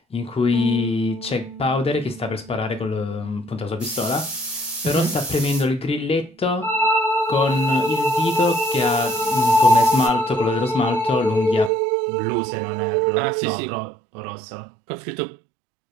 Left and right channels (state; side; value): drops out; left; at 11.7 s